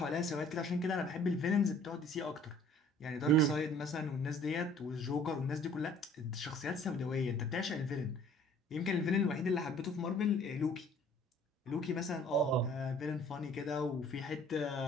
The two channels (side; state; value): both; normal; correlation 0.54